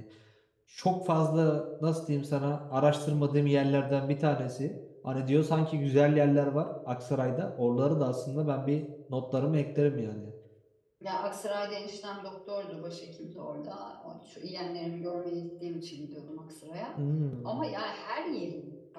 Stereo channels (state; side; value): identical; both; correlation 1.00